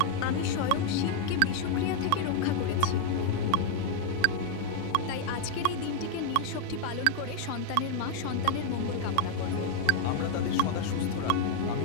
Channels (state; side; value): different; both; correlation 0.00